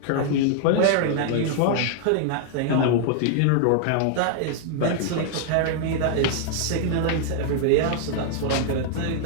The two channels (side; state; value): both; different; correlation -0.01